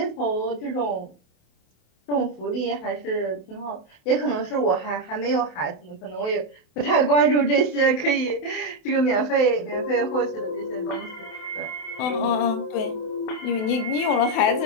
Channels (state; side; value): late; right; 28 ms